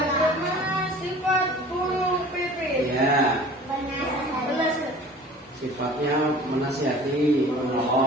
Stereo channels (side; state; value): both; normal; correlation 0.44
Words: sifat burung pipit? Ya, Belas. sifatnya menasihati,